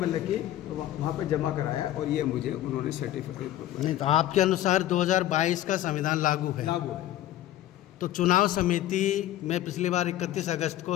कि वहाँ पर जमा कराया और ये मुझे उन्होंने सर्टिफिकेट। नहीं, तो आपके अनुसार 2022 का संविधान लागू है। तो चुनाव समिति में पिछली बार 31 अगस्त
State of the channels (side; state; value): right; quieter; 13.4 dB